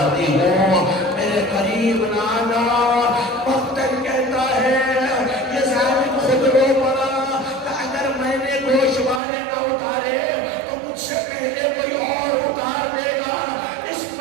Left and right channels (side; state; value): left; drops out; at 9.2 s